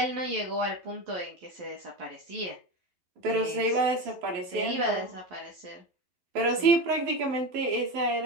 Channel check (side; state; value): left; late; 11 ms